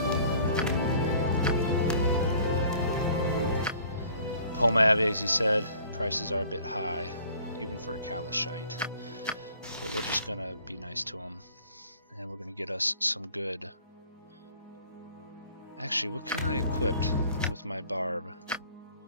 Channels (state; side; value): inverted; both; correlation -0.53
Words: Pomab, as he said, prices are a bit high, even for a Kalashite. But we're just gonna be nice to him. and we're going to get us some good... Actually, what can I equip with my barb?